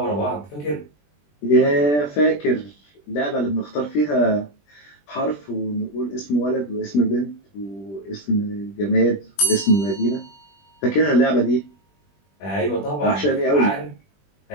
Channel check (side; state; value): right; late; 20 ms